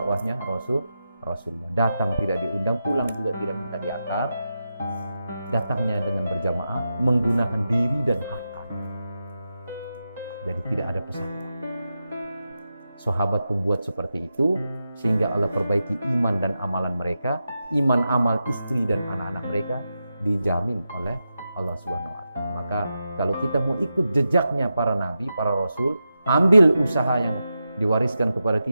Rasulullah. Datang tidak diundang, pulang juga tidak minta diantar. Datangnya dengan berjamaah, menggunakan diri dan harta. Jadi tidak ada pesan. Sahabat pembuat seperti itu, sehingga Allah perbaiki iman dan amalan mereka, iman amal istri dan anak-anak mereka dijamin oleh Allah Subhanahu wa Ta'ala. Maka kalau kita mau ikut jejaknya para nabi, para rasul, ambil usaha yang diwariskan kepada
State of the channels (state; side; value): inverted; both; correlation -0.89